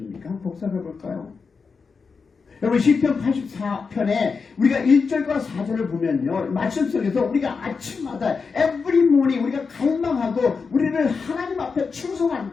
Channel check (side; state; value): right; quieter; 5.1 dB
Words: 한번 복습해 볼까요? 여러분 시편 84편에 우리가 1절과 4절을 보면요, 말씀 속에서 우리가 아침마다 every morning 우리가 갈망하고 우리를 하나님 앞에